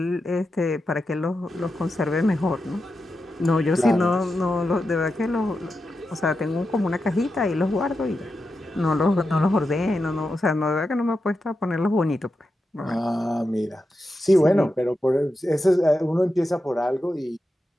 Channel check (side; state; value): both; normal; correlation 0.89